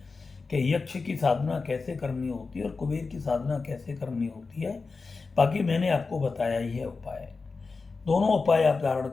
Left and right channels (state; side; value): quieter; right; 4.3 dB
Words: कि यक्ष की साधना कैसे करनी होती है और कुबेर की साधना कैसे करनी होती है। बाकी मैंने आपको बताया ही है उपाय। दोनों उपाय आप धारण